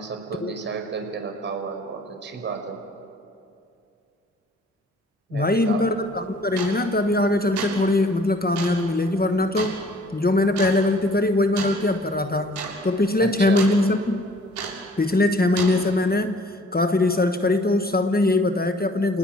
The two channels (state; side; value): normal; both; correlation 0.55